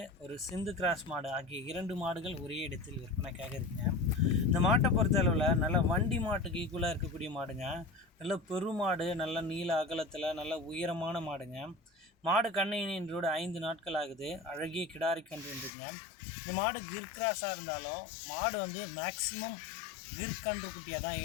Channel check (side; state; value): right; drops out; at 15.7 s